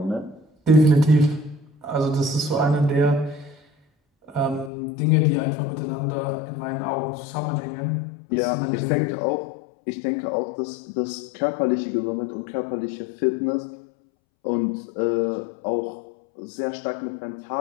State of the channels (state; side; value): drops out; right; at 4.7 s